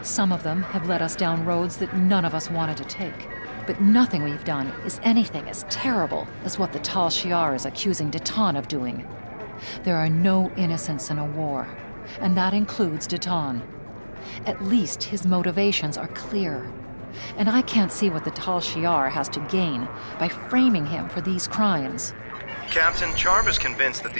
Some of them have led us down roads that none of us wanted to take. But nothing we've done is anything as terrible as what the Tal Shiar is accusing Deton of doing. There are no innocents in a war, and that includes Deton. At least his motivations are clear. And I can't see what the Tal Shiar has to gain by framing him for these crimes. Captain, Charva's convinced that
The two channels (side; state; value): both; inverted; correlation -1.00